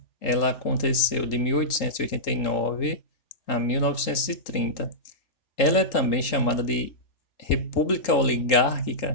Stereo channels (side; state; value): right; late; 3.8 ms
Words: ela aconteceu de 1889 a 1930. Ela é também chamada de República